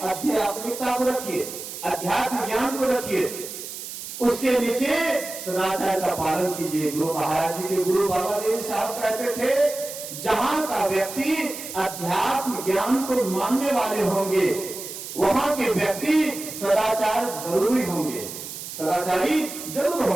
आध्यात्मिकता को रखिए, अध्यात्म ज्ञान को रखिए, उसके नीचे सदाचार का पालन कीजिए। गुरु महाराज जी के गुरु बाबा देव साहब कहते थे, जहां का व्यक्ति अध्यात्म ज्ञान को मानने वाले होंगे, वहां के व्यक्ति सदाचार जरूरी होंगे, सदाचारी जरूर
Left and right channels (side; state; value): right; noise; hiss, 10 dB below the sound